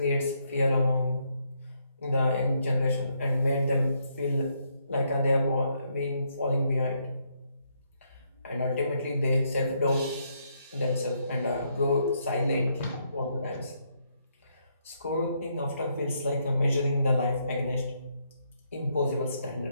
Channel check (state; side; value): inverted; both; correlation -0.75